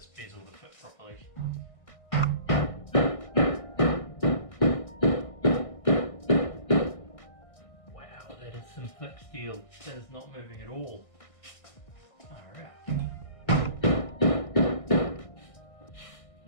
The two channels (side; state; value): right; late; 1.6 ms